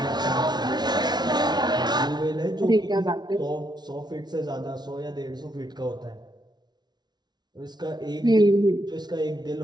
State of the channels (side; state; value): left; late; 0.20 ms